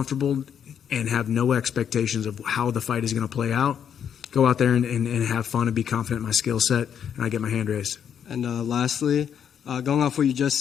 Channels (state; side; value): quieter; right; 8.4 dB